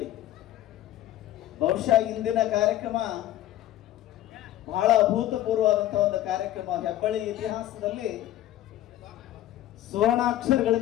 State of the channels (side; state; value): right; quieter; 13.5 dB